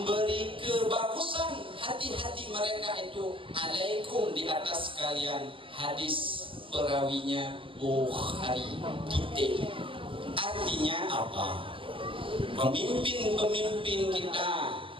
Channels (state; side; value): late; left; 0.25 ms